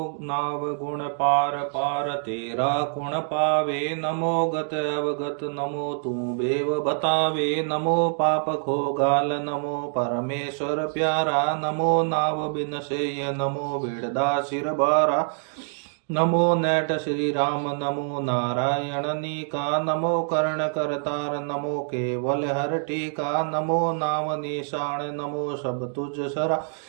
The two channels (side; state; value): left; silent; 61 dB below the other